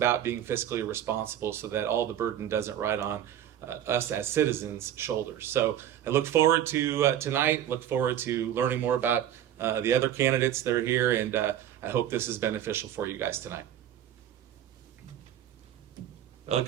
being fiscally responsible so that all the burden doesn't ride on us as citizens' shoulders. So I look forward to tonight, look forward to learning more about the other candidates that are here, and I hope this is beneficial for you guys tonight. Well,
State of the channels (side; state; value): left; quieter; 10.9 dB